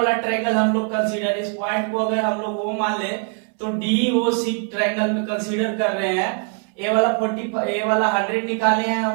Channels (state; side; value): quieter; left; 39.7 dB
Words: ट्रायंगल हम लोग कंसीडर, इस पॉइंट को अगर हम लोग वो मान ले तो DOC ट्रायंगल में कंसीडर कर रहे हैं। ए वाला 100 निकाले हैं